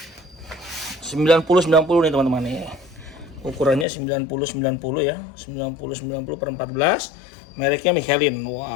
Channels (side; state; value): right; drops out; at 3.9 s